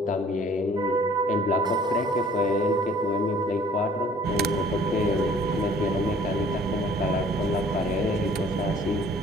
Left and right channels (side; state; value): both; normal; correlation 0.54